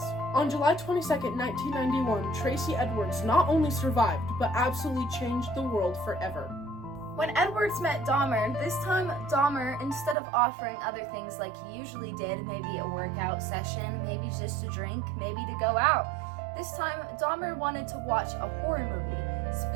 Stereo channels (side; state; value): left; drops out; at 10.2 s